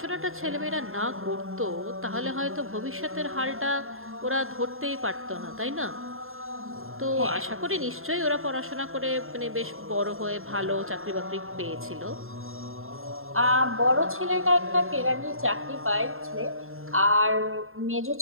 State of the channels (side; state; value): left; late; 0.61 ms